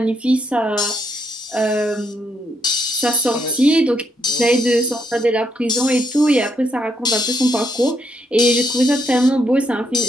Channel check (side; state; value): both; normal; correlation 0.76